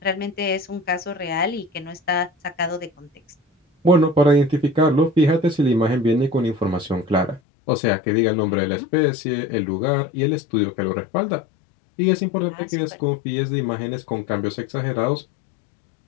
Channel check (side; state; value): right; drops out; at 7.4 s